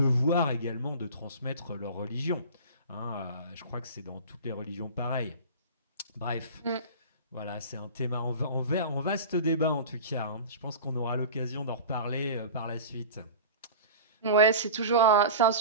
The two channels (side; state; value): both; inverted; correlation -0.34